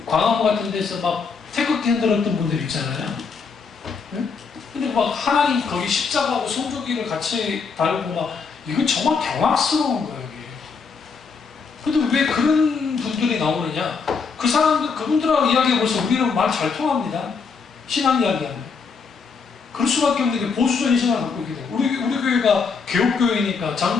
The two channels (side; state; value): right; quieter; 5.3 dB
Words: 광화문 같은 데서 막 태극기 흔들었던 분들 있잖아요. 네? 근데 막 하나님 거기 십자가하고 성조기를 같이 달고 막 이거 정말 경악스러운 거예요, 이게. 근데 왜 그런 분들이 나오느냐? 그 사람들, 그분들하고 이야기해보세요. 우리는 말 잘 통합니다. 신앙 이야기하면. 그럴 수밖에 없는 게 보수적인 신앙을 갖고 있기 때문에. 우리 교회가 개혁교회니까,